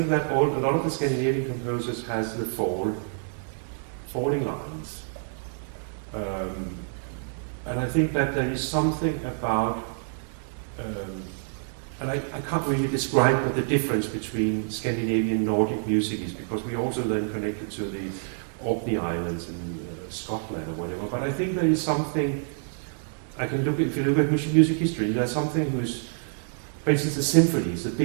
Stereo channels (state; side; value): silent; left; 60 dB below the other